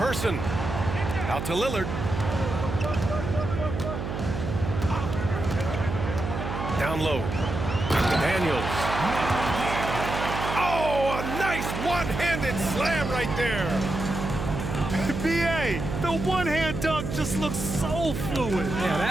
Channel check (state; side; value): noise; right; hum, 4 dB below the sound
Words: Out to Lillard. Down low. Daniels. Oh, a nice one-handed slam right there. B.A., the one-hand dunk just looks so fluid. Yeah,